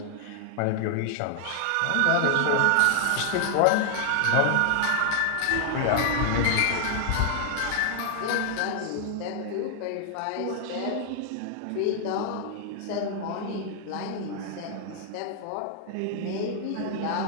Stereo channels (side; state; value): both; different; correlation 0.00